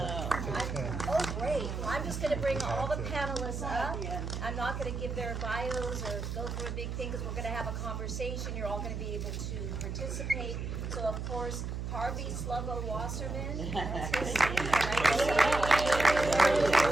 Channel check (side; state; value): right; noise; hum, 4 dB below the sound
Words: Oh, great. Well, I'm just going to bring all the panelists up. I'm not going to give their bios or go through a big thing because we're going to have a conversation. You're all going to be able to participate. So, of course, Harvey Sluggo Wasserman. That's his name.